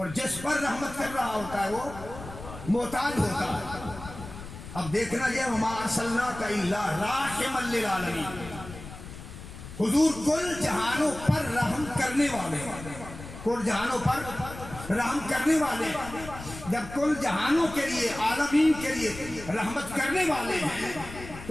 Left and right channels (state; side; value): noise; left; rumble, 13 dB below the sound